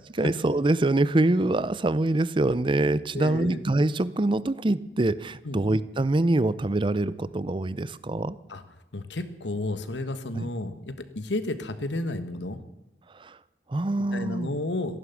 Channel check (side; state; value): both; normal; correlation 0.77